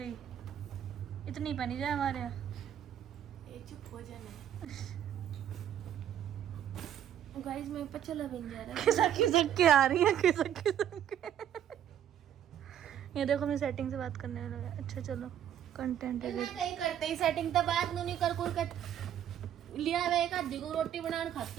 इतनी पहनी जाए हमारे यहाँ। ये चुप हो जाना। गाइस मैं पर चला भी नहीं जा रहा। खिसक खिसक के आ रही है, खिसक खिसक के। ये देखो मैं सेटिंग से बात करने लगा। अच्छा चलो कंटेंट है। नहीं करते ही सेटिंग तो बात नहीं कर लिया वे एक आधी को रोटी बनाने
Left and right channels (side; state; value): left; quieter; 10.3 dB